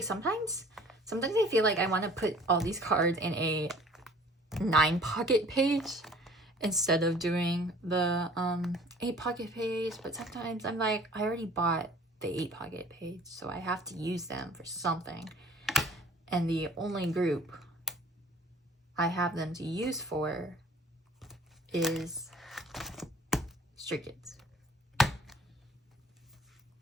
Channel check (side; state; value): both; normal; correlation 0.50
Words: sometimes I feel like I want to put all these cards in a 9 pocket page instead of doing the 8 pocket page. But sometimes I'm like, I already bought the 8 pocket page, so I have to use them for something. And the only group I have them to use for is Stray Kids.